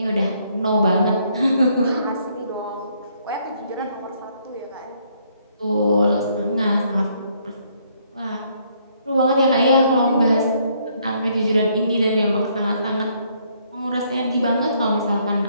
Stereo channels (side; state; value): both; inverted; correlation -0.68